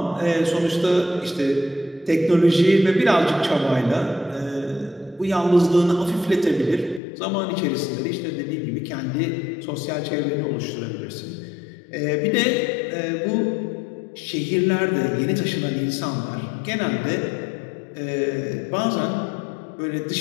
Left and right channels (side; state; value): right; drops out; at 7.0 s